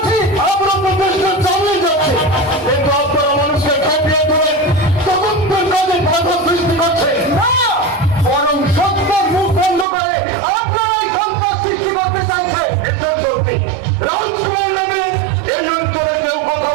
আমরা তো দেশকে চালিয়ে যাচ্ছে, কিন্তু আপনারা মানুষকে খাটিয়ে তুলে তদন্তের কাজে বাধা সৃষ্টি করছে না, বরং সত্যের মুখ বন্ধ করে আপনারাই সন্ত্রাস সৃষ্টি করতে চাইছে। এসব সত্যি রাজকুমার নামে এই অঞ্চলে কেউ কোথাও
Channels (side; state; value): left; drops out; at 9.9 s